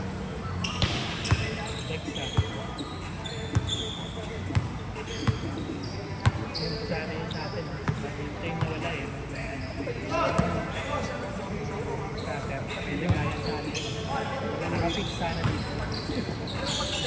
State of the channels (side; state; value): both; identical; correlation 1.00